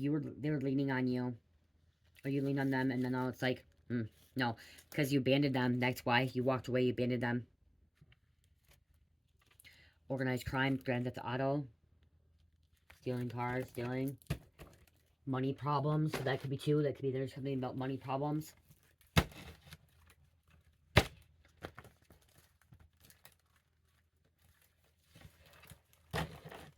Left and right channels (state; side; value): identical; both; correlation 1.00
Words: were leaning on you, or you lean on them, and then all it's like, no, because you abandoned them. That's why you walked away. You abandoned them. Organized crime, Grand Theft Auto, stealing cars, stealing money problems. So that could be too. That could be there's something about money problems.